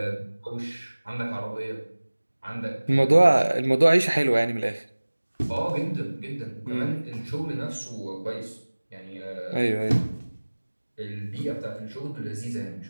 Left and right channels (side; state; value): both; inverted; correlation -1.00